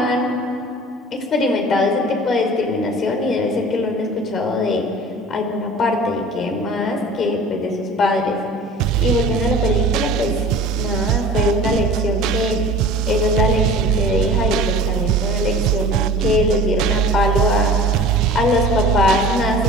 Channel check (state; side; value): normal; both; correlation 0.41